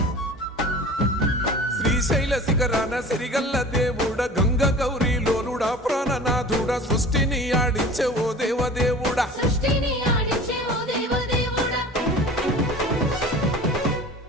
శ్రీశైల శిఖరాన సిరిగల్ల దేవుడ గంగ గౌరీ లోలుడా ప్రాణనాథుడ సృష్టిని ఆడించే ఓ దేవదేవుడా సృష్టిని ఆడించే ఓ దేవదేవుడా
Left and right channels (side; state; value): both; normal; correlation 0.40